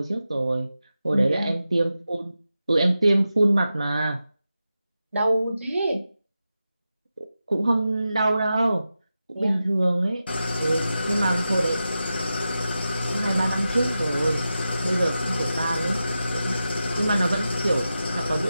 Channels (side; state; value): both; inverted; correlation -0.91